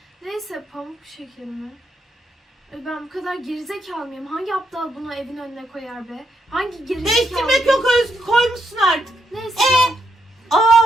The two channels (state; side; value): normal; both; correlation 0.78